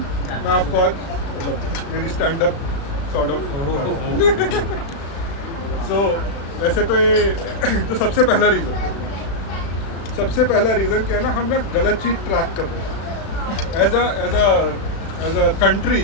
मैं आपको आज मतलब मेरी स्टैंड अप सॉर्ट ऑफ सो वैसे तो ये तो सबसे पहला रीज़न क्या है ना, हम ना गलत चीज़ ट्रैक कर रहे हैं। As a country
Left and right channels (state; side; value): late; right; 36 ms